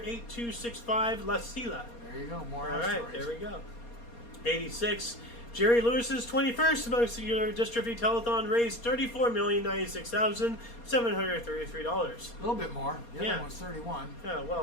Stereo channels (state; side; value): late; right; 4.2 ms